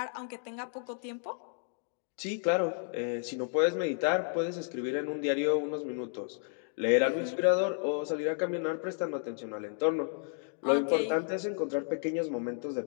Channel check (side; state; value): right; silent; 56 dB below the other